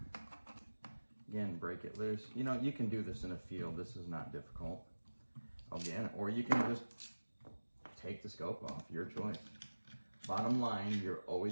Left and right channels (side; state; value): both; inverted; correlation -1.00